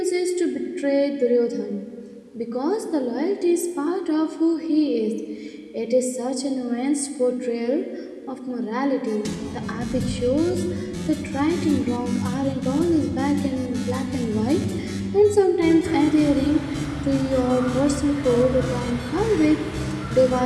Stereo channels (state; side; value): identical; both; correlation 1.00